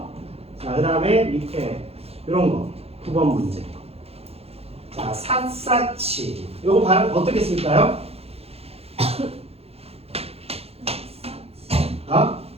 자, 그 다음에 밑에 이런 거 9번 문제. 자, 삿사치 요거 발음 어떻게 쓸까요? 아?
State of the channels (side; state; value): left; late; 0.29 ms